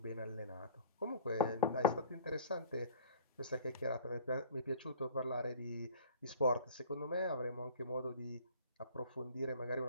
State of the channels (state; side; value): inverted; both; correlation -0.47